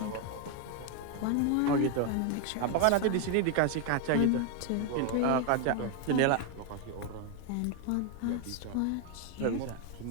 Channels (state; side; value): different; both; correlation 0.01